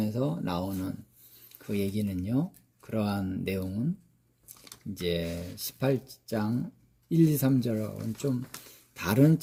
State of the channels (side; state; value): both; identical; correlation 1.00